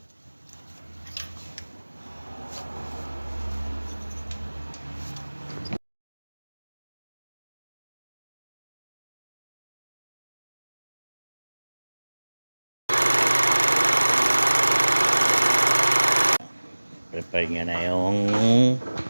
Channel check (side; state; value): both; inverted; correlation -1.00